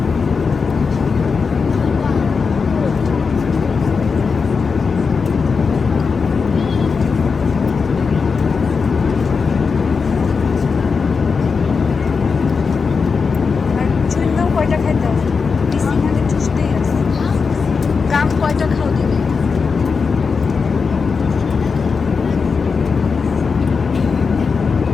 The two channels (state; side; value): quieter; right; 5.1 dB